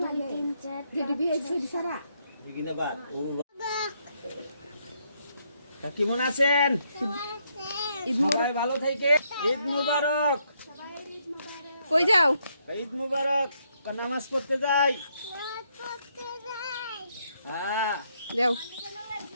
বিগিনাবাদ। তা কেমন আছেন? ঈদ সবাই ভালো থেকে। ঈদ মুবারক। কই যাও? ঈদ মুবারক। নামাজ পড়তে যাই। হ্যাঁ, যাও।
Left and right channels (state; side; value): inverted; both; correlation -0.75